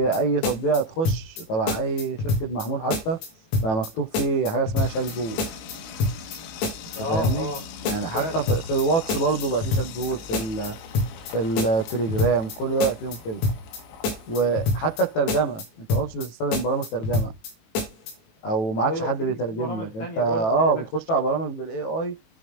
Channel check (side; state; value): right; late; 19 ms